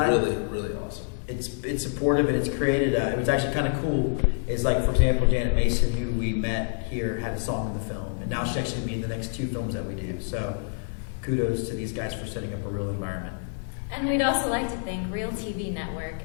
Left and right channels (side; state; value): right; silent; digital silence